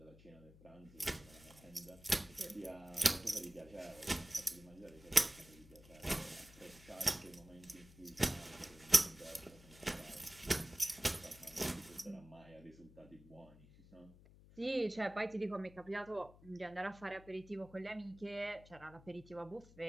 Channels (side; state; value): left; noise; hum, 21 dB below the sound